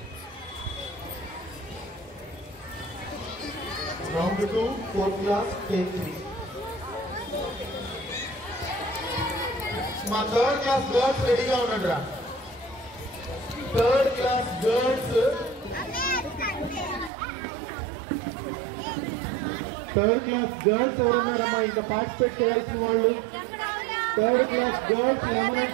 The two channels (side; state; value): left; drops out; at 17.1 s